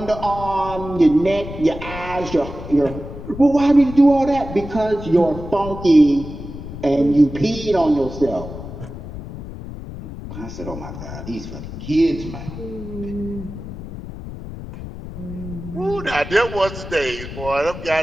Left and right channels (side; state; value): left; noise; rumble, 11 dB below the sound